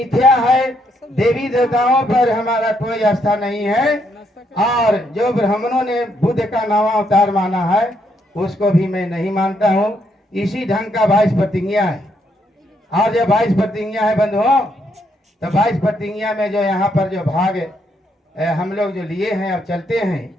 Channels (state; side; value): normal; both; correlation 0.75